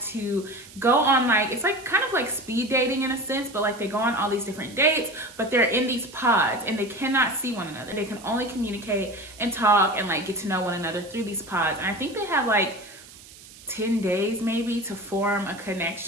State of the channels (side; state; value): right; noise; hiss, 20 dB below the sound